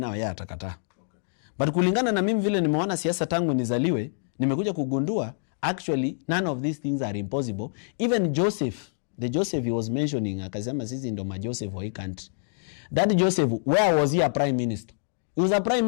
yeah, atakata. But kulingana na mimi vile nimeona siasa tangu nizaliwe, nimekuja kugundua, actually, none of these things are impossible. Even Joseph, the Joseph he was mentioning, akasema sisi ndo ma Joseph wa hii country. That Joseph, where was he a prime minister? He was a prime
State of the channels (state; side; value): silent; right; digital silence